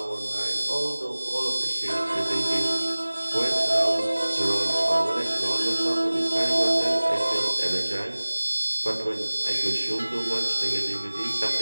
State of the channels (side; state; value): both; inverted; correlation -1.00